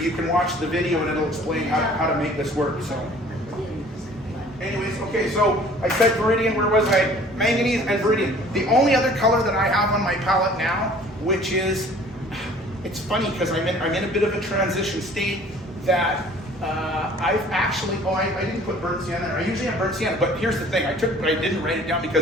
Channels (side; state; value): both; normal; correlation 0.51